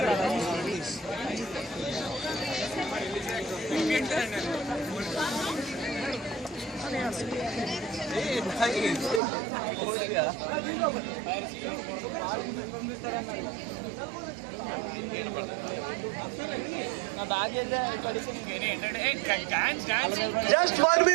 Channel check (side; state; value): left; drops out; at 9.2 s